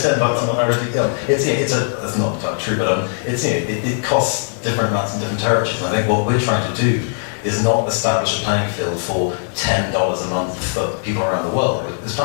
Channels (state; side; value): silent; right; 58 dB below the other